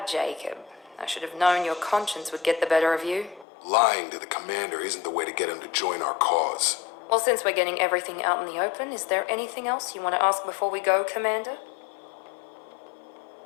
Jacob. I should have known your conscience would get the better of you. Lying to the commander isn't the way to get him to join our cause. Well, since we're getting everything out in the open, is there anything else you want to ask before we go, Commander?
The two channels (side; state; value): right; drops out; at 3.5 s